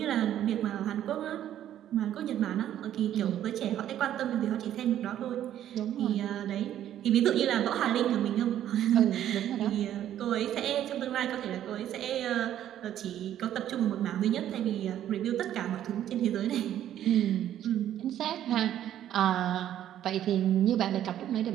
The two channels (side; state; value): left; quieter; 11.4 dB